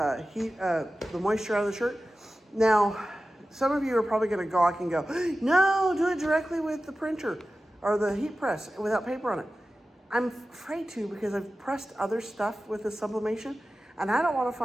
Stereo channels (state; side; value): normal; both; correlation 0.94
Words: moisture out of the shirt. Now, some of you are probably gonna gawk and go, no, do it directly with the printer or the heat press without paper on it. I'm afraid to because I've pressed other stuff with the sublimation, and I don't wanna